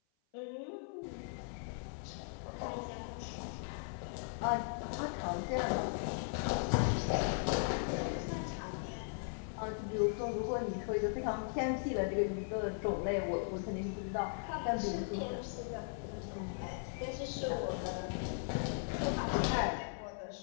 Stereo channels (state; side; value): silent; right; 52 dB below the other